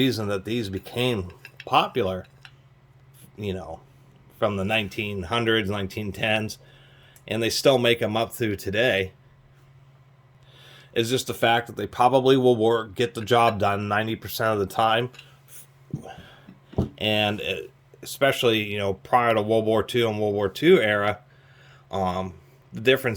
that these became popular, from the 1900s, 1910s, and they still make them up through today, is just the fact that they probably will get the job done 90% of the time. And especially, prior to World War II and World War II era, the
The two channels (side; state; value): both; identical; correlation 1.00